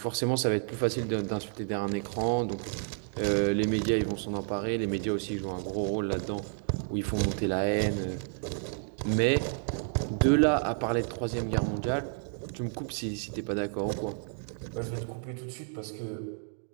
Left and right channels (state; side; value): silent; left; 57 dB below the other